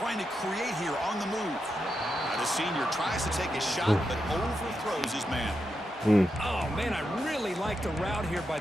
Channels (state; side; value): normal; both; correlation 0.86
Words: to create here on the move. Now the senior tries to take a shot, but overthrows his man. Oh, man, I really like the route here by